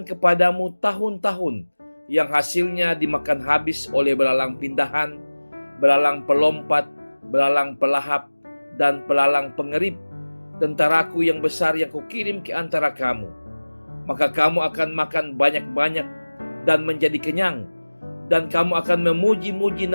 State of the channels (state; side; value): inverted; both; correlation -1.00